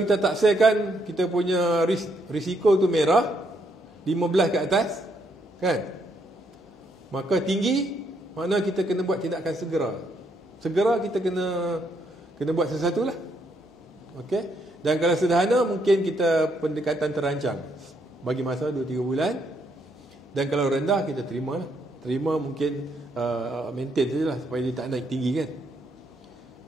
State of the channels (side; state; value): both; normal; correlation 0.74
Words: taksirkan kita punya risiko tu merah 15 ke atas, kan? Maka tinggi, makna kita kena buat tindakan segera. Segera kita kena buat sesuatu lah. Okey. Dan kalau sederhana mungkin kita pendekatan terancang bagi masa 2-3 bulan. Dan kalau rendah kita terima lah. Terima mungkin maintain sajalah supaya dia tak naik tinggi kan.